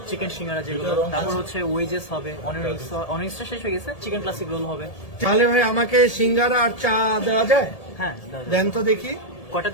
চিকেন সিঙ্গারা যেগুলো, তারপর হচ্ছে ওয়েজেস হবে, অনিয়ন্সটা শেষ হয়ে গেছে, চিকেন ক্লাসিক রোল হবে। তাহলে ভাই আমাকে সিঙ্গারা আর চা দেওয়া যায়? হ্যাঁ, দাদা। দেন তো দেখি। কটা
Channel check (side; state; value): right; late; 1.7 ms